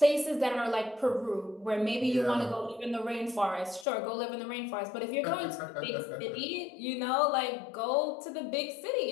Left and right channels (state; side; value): drops out; right; at 3.9 s